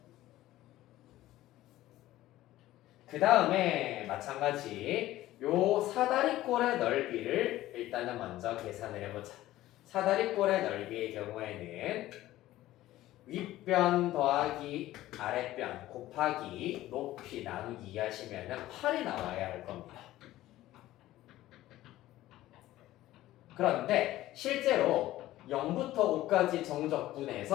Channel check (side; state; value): right; quieter; 15.4 dB